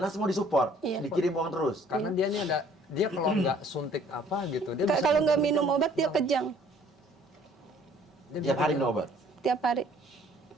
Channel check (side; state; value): both; normal; correlation 0.57